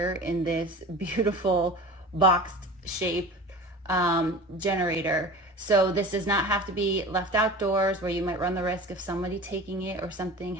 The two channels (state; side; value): normal; both; correlation 0.36